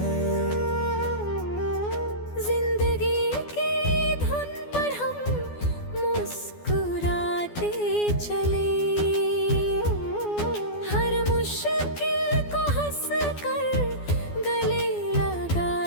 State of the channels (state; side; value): late; right; 12 ms